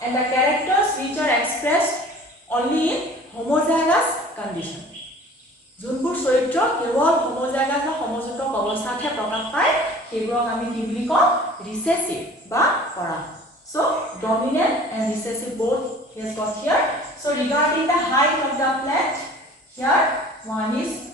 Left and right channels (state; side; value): normal; both; correlation 0.46